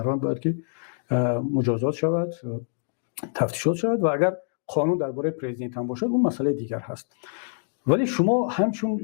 باید که مجازات شود، تفتیشات شود و اگر قانون درباره پرزیدنت هم باشد اون مسئله دیگر هست. ولی شما همچون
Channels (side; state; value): right; silent; digital silence